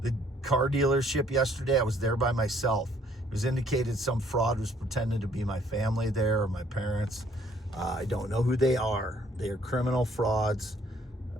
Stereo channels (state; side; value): normal; both; correlation 0.63